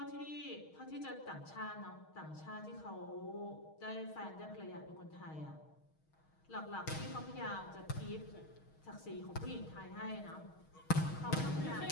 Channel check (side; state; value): right; late; 6.4 ms